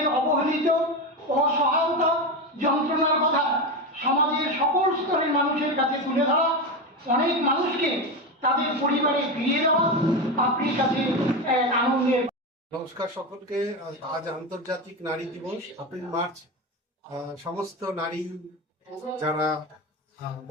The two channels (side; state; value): both; normal; correlation 0.17